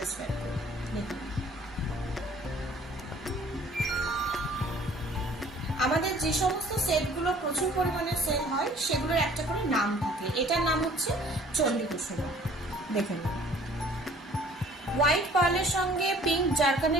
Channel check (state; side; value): normal; both; correlation 0.53